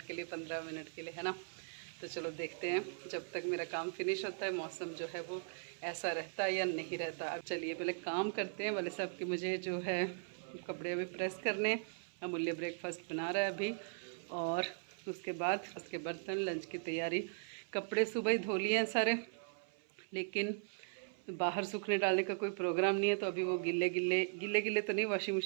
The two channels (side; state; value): left; silent; 52 dB below the other